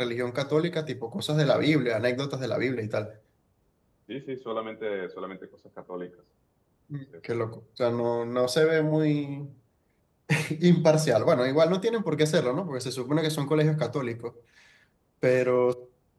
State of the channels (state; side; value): identical; both; correlation 1.00